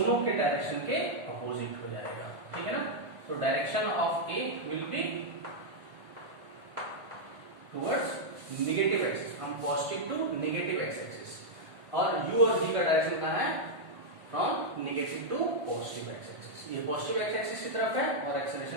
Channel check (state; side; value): late; left; 1.5 ms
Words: के डायरेक्शन के अपोजिट हो जाएगा, ठीक है ना। तो direction of a will be towards negative axis, हम positive to negative x axis, और u और v का डायरेक्शन कहाँ है, from negative to positive x axis. ये पॉजिटिव एक्स एक्सिस की तरफ है और